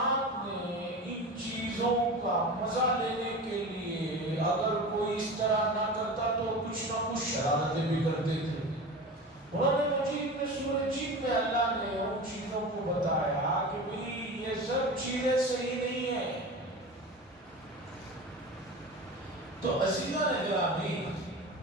نے ان چیزوں کا مزہ لینے کے لیے اگر کوئی اس طرح نہ کرتا شرارتیں بھی کرتے تھے. قرآن مجید میں سورہ جن میں اللہ نے ان چیزوں کو بتایا کہ بھئی یہ سب چیزیں صحیح نہیں ہیں. تو عزیزان گرامی،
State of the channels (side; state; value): both; normal; correlation 0.31